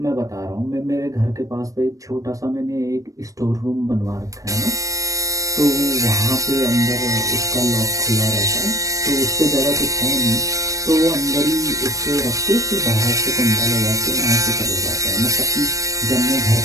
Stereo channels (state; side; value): late; left; 0.16 ms